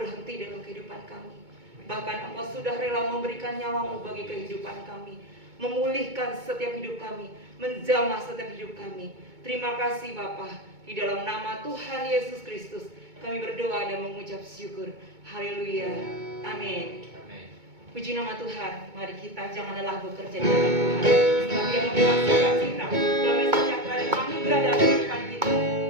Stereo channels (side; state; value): left; late; 2.2 ms